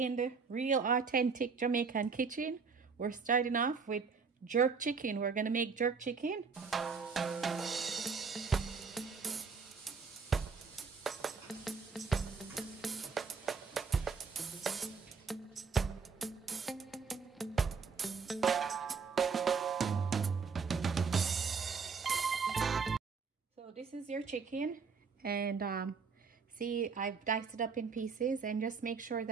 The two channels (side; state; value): left; quieter; 5.3 dB